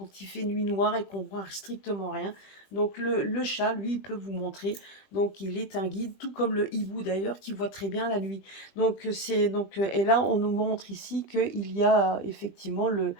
il fait nuit noire et qu'on voit strictement rien. Donc le chat, lui, il peut vous montrer. Donc il est un guide, tout comme le hibou d'ailleurs, qui voit très bien la nuit. Donc et là on nous montre ici qu'il y a effectivement vous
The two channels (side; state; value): right; late; 20 ms